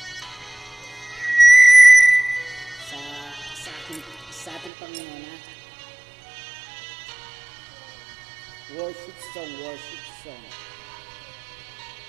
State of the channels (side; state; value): left; drops out; at 4.7 s